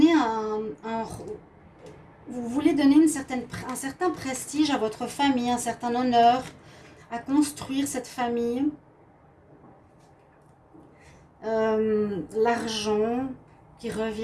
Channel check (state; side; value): identical; both; correlation 1.00